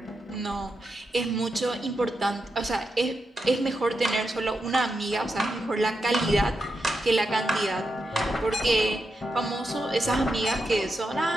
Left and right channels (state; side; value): normal; both; correlation 0.86